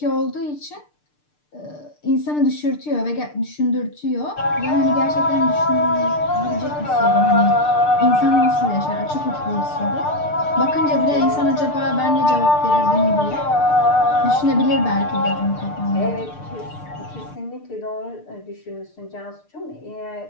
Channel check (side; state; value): right; late; 6.7 ms